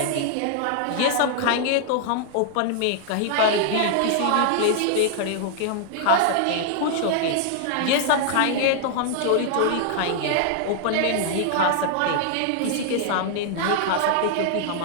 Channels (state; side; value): different; both; correlation 0.00